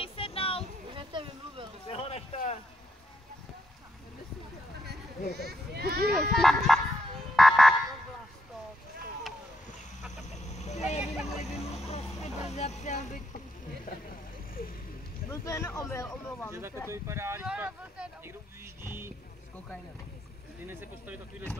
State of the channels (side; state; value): both; normal; correlation 0.76